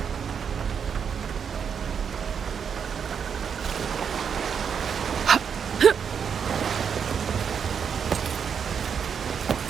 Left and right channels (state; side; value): quieter; left; 7.1 dB